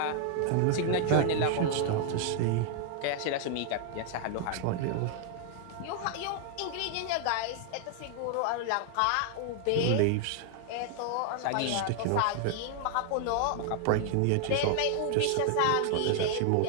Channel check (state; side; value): different; both; correlation 0.00